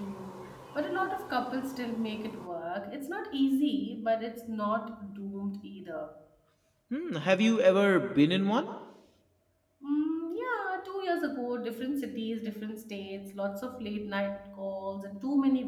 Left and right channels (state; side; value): identical; both; correlation 1.00